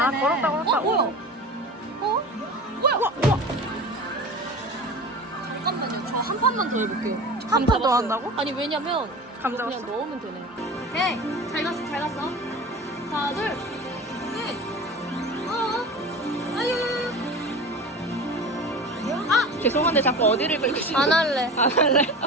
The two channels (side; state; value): both; normal; correlation 0.34